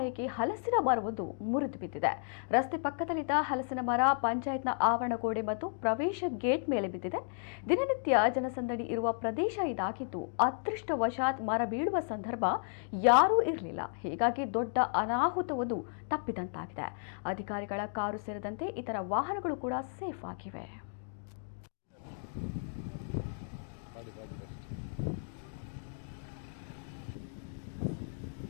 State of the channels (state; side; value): silent; right; digital silence